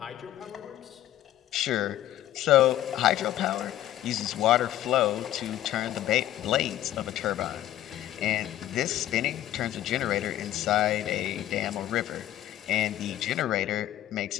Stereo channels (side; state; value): right; quieter; 13.2 dB